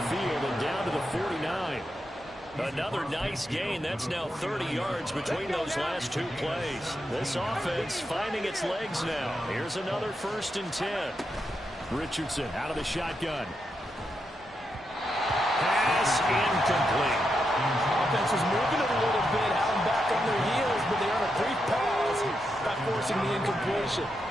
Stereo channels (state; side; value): normal; both; correlation 0.84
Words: and down to the 49. Another nice gain. That's now 30 yards between those last 2 plays. This offense finding its legs now. Here's another 1st and 10. Richardson out of the shotgun. Pass incomplete. Offense was moving it a little bit, had them back on their heels, but they earn a brief pause by forcing the incompletion.